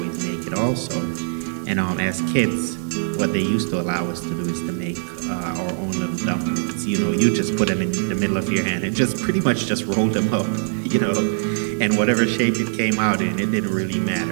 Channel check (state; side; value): silent; left; 58 dB below the other